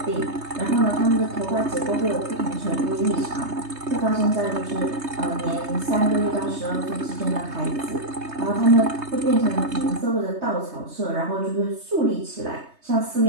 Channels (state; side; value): late; left; 3.2 ms